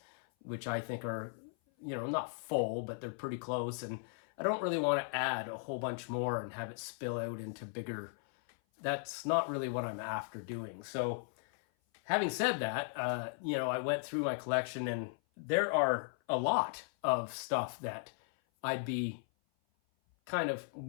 which I think are, not full, but they're pretty close. And I don't really want to add a whole bunch more and have it spill out into bigger. That's not really what I'm after doing. So having said that, I went through my collection, and there are a lot of stuff that I'd be kind of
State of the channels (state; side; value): silent; right; 53 dB below the other